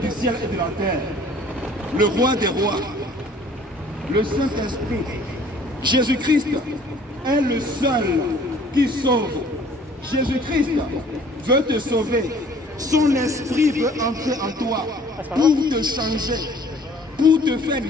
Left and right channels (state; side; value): normal; both; correlation 0.54